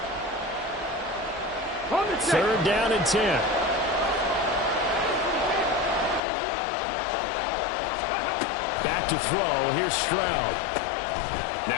3rd down and 10. Back to throw. Here's Stroud.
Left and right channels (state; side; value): drops out; right; at 6.2 s